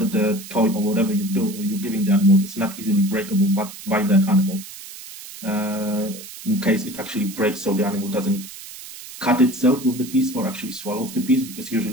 the toy or whatever you're giving the animal is not easily breakable by that animal. In case it actually breaks, so the animal doesn't cut itself with the piece or actually swallows the piece, because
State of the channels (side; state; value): right; noise; hiss, 14 dB below the sound